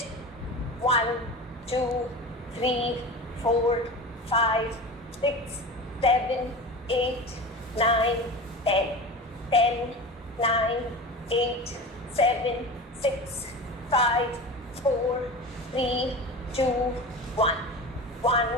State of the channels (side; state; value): both; normal; correlation 0.31